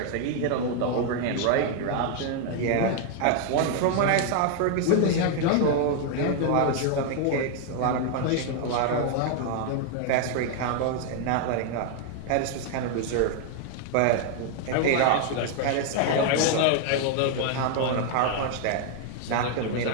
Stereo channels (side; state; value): both; different; correlation 0.00